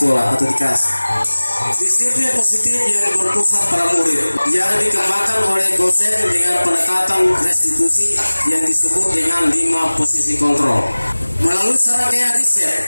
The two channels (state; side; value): inverted; both; correlation -1.00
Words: atau di kelas. Disiplin positif yang berpusat pada murid yang dikembangkan oleh dosen dengan pendekatan restitusi yang disebut dengan 5 posisi kontrol. Melalui serangkaian riset